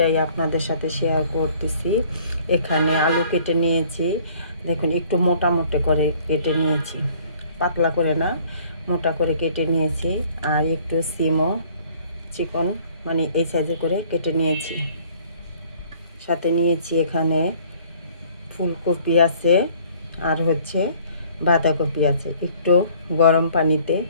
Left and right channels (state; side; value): inverted; both; correlation -0.56